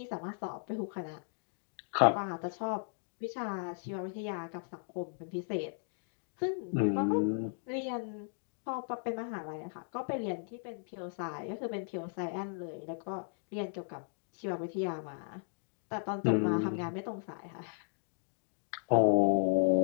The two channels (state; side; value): silent; right; digital silence